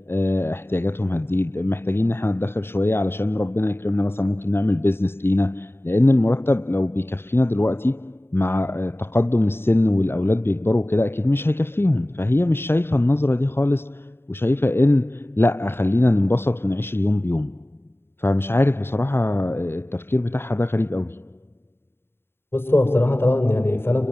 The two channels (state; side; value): late; right; 0.11 ms